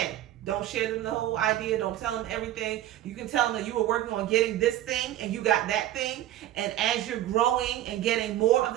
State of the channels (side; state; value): left; quieter; 13.3 dB